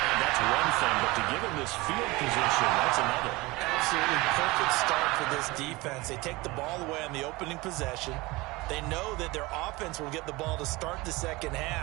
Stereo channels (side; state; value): left; quieter; 21.6 dB